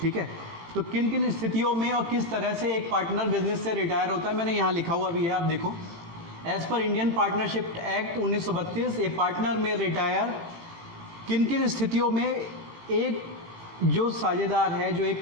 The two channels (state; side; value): late; left; 18 ms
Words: ठीक है। तो किन किन स्थितियों में और किस तरह से एक पार्टनर बिजनेस से रिटायर होता है, मैंने यहाँ लिखा हुआ भी है, आप देखो। एज पर Indian partnership act 1932 A partner में रिटायर, किन किन स्थितियों में एक जो साझेदार है, जो